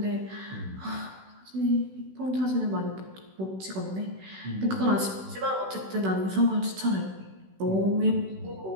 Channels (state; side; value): late; left; 16 ms